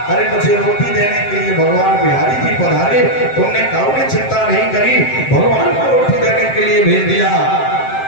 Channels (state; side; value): late; right; 7.6 ms